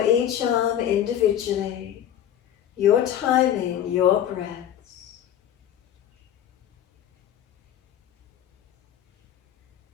each arm individually. Your timing, your breaths.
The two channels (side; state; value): right; quieter; 10.6 dB